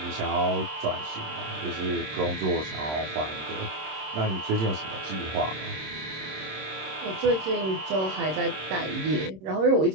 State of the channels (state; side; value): late; left; 26 ms